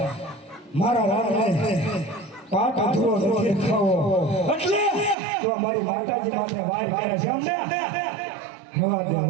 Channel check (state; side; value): drops out; left; at 5.2 s